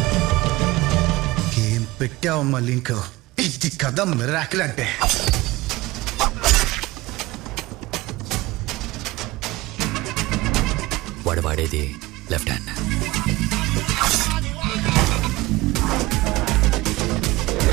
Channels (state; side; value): quieter; left; 19.8 dB